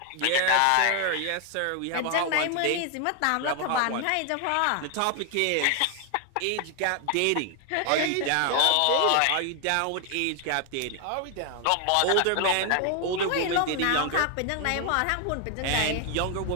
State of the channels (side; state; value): both; different; correlation 0.00